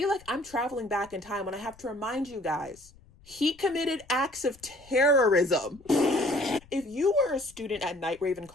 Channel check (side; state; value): left; noise; rumble, 25 dB below the sound